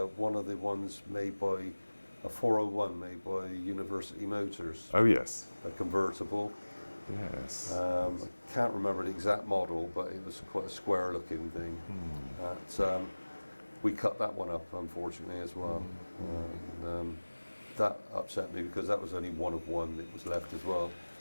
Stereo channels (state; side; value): inverted; both; correlation -1.00